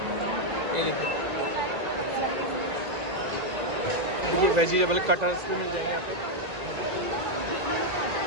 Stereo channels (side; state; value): left; late; 1.9 ms